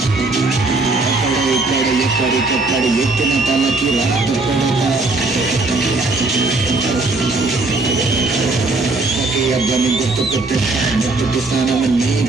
ఎక్కడికెక్కడ ఎత్తిన తలకి రాత అబ్బాయి గుర్తుకొట్టే ముట్టుకి స్నానం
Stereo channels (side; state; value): left; quieter; 3.3 dB